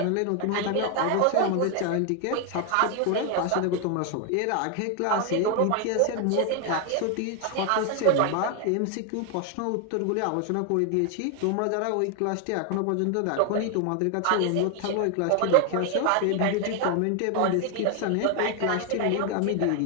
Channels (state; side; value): different; both; correlation 0.01